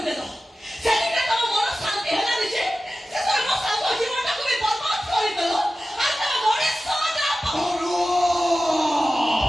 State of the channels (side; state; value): both; normal; correlation 0.94